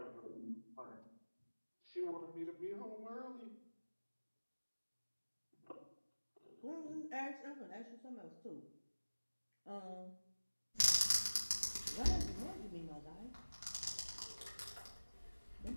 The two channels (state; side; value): inverted; both; correlation -1.00